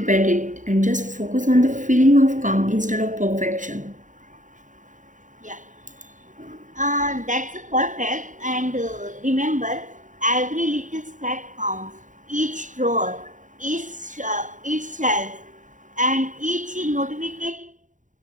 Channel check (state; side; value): late; left; 0.37 ms